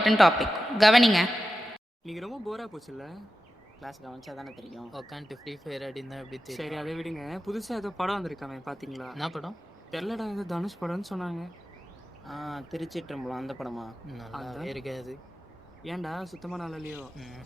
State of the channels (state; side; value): normal; both; correlation 0.92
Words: topic. கவனிங்க. இன்னைக்கு ரொம்ப Bora போச்சுல்ல? Class கவனிச்சா தானே தெரியும். உட்காந்துட்டு free fire ஆடினா எப்படி தெரியும்? சரி அதை விடுங்க. புதுசாக ஏதோ படம் வந்திருக்காமே பார்த்தீங்களா? என்ன படம்? தெரிலடா, ஏதோ தனுஷ் படம்னு சொன்னாங்க. திருச்சிற்றம்பலம் அந்த படமா? நல்லா இருக்காது. ஏன்டா சுத்தமாக நல்லா இல்லையோ?